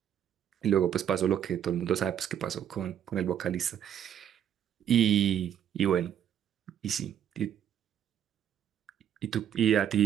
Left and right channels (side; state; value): left; quieter; 9.7 dB